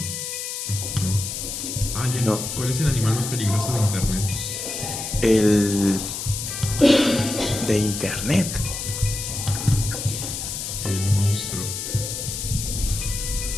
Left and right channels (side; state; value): left; noise; hiss, 5 dB below the sound